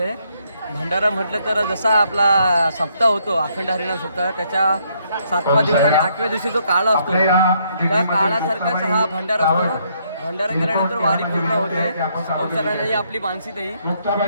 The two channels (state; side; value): inverted; both; correlation -0.71